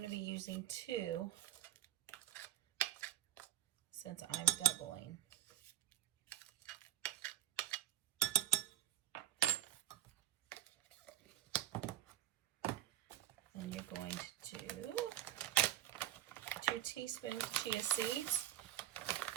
to be using 2 since I'm doubling. And you're going to do 2 teaspoons chia seeds.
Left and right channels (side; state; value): left; quieter; 13.1 dB